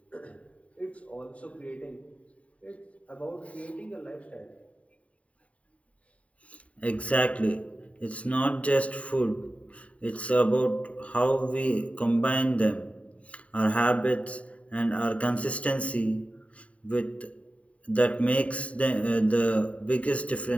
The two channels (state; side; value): late; right; 0.066 ms